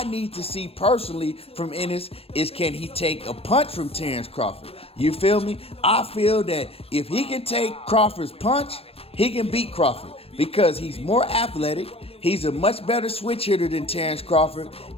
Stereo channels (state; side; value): late; right; 0.28 ms